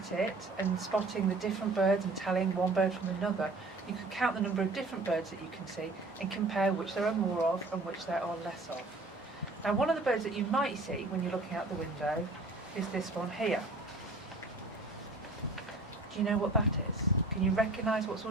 it and spotting the different birds and telling one bird from another, you can count the number of different birds that you can see and compare which there are more of and which there are less of. Now, one of the birds that you might see when you're looking out the window is this one here. Do you know what that is? Can you recognise what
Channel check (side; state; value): left; quieter; 3.0 dB